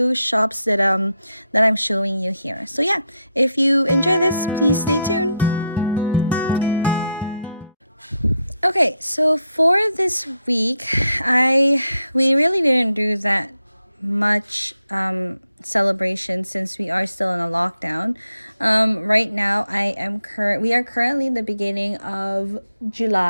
shops that I'm showing you here. So yeah, if you enjoy this, please stay tuned. Okay, so for this week, we really didn't do that much celebration since we are still in a lockdown. Right now we are currently in the beginning of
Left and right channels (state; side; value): inverted; both; correlation -0.81